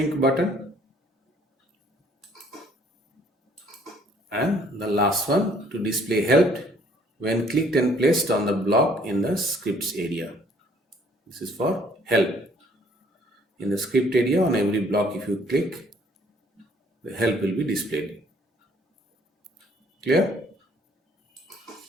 button. And the last one, to display helped when clicked and placed on the block in the scripts area. This is for help. In the script area, on every block, if you click, the help will be displayed. Clear?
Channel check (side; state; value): both; normal; correlation 0.61